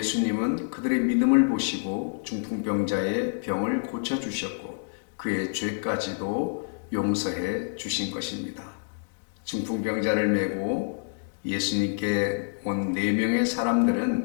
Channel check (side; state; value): right; silent; digital silence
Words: 그들의 믿음을 보시고 중풍병자의 병을 고쳐주셨고 그의 죄까지도 용서해 주신 것입니다. 중풍병자를 메고 예수님께 온 4명의